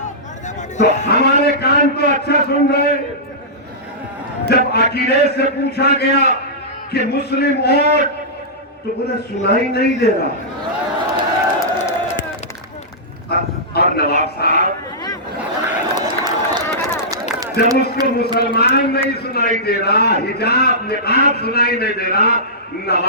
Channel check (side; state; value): both; normal; correlation -0.16